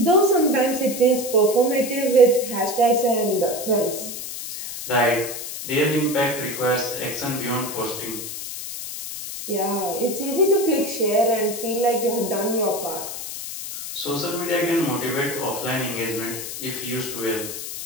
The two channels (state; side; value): noise; left; hiss, 8 dB below the sound